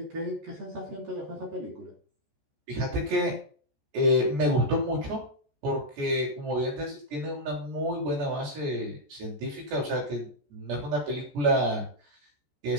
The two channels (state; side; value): late; left; 14 ms